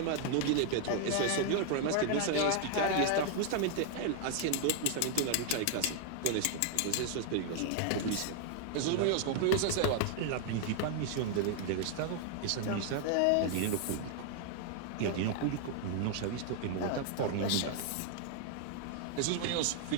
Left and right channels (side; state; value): both; different; correlation 0.00